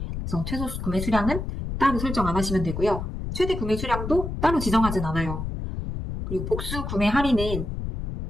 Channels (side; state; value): left; noise; rumble, 5 dB below the sound